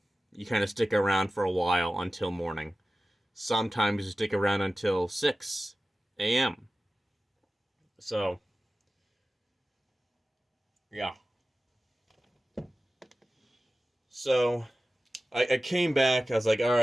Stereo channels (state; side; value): normal; both; correlation 0.95